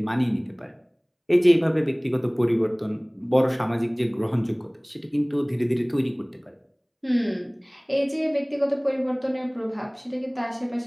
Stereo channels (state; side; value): identical; both; correlation 1.00